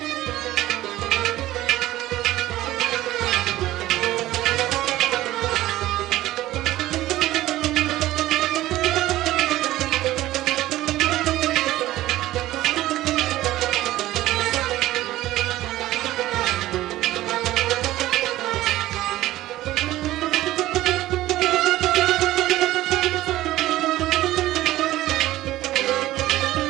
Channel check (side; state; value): left; quieter; 15.7 dB